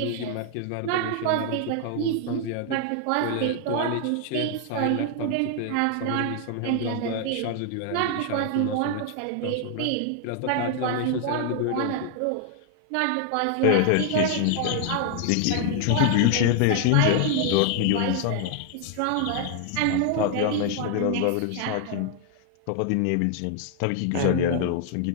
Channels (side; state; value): both; different; correlation 0.00